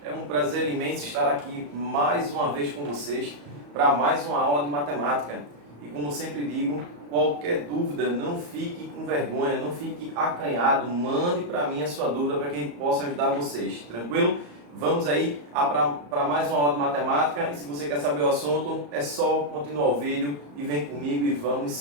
é um prazer imenso estar aqui mais uma vez com vocês para mais uma aula de matemática. E como sempre digo, qualquer dúvida, não fique com vergonha, não fique acanhado, mande para mim a sua dúvida para que a gente possa ajudar vocês, tranquilo? Vamos aí para mais uma aula de matemática, e se você quer saber o assunto, é só continuar o vídeo e vem comigo e vamos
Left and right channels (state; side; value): late; left; 34 ms